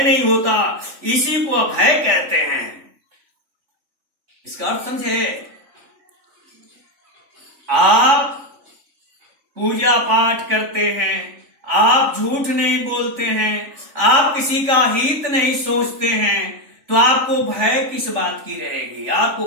नहीं होता, इसी को अभय कहते हैं। इसका अर्थ समझे? आप पूजा पाठ करते हैं, आप झूठ नहीं बोलते हैं, आप किसी का हित नहीं सोचते हैं, तो आपको भय किस बात की रहेगी?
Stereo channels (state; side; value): late; left; 3.5 ms